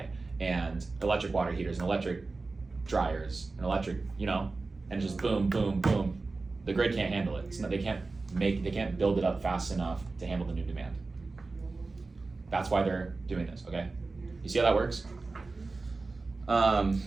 and electric water heaters and electric dryers and electric, and just boom, boom, boom. The grid can't handle it. They can't build it up fast enough to handle the new demand. That's why they're doing this, okay? You see how that works?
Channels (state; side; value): quieter; left; 3.7 dB